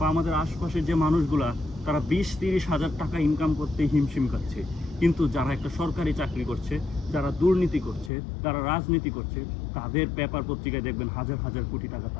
আমাদের আশপাশের যে মানুষগুলা, তারা 20-30 হাজার টাকা ইনকাম করতে হিমশিম খাচ্ছে। কিন্তু যারা একটা সরকারি চাকরি করছে, যারা দুর্নীতি করছে, যারা রাজনীতি করছে, তাদের পেপার পত্রিকায় দেখবেন হাজার হাজার কোটি টাকা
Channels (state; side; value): drops out; right; at 8.1 s